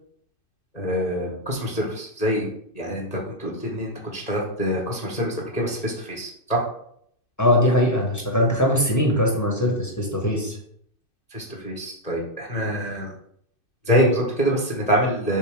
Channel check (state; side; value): late; right; 2.6 ms